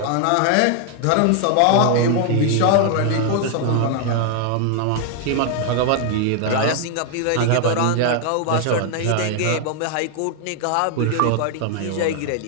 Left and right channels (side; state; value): both; different; correlation 0.00